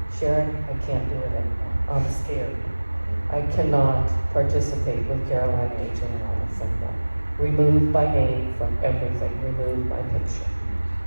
Sharon, I can't do it anymore. I'm scared. I cannot participate with Caroline H. and Alice anymore. Remove my name from everything. Remove my picture.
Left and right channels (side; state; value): both; inverted; correlation -1.00